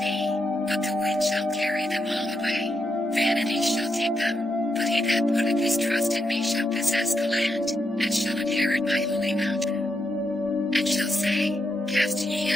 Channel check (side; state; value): both; normal; correlation 0.83